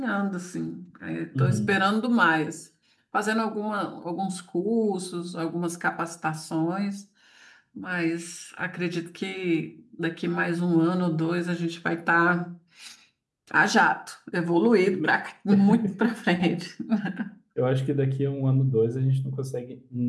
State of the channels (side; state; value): both; identical; correlation 1.00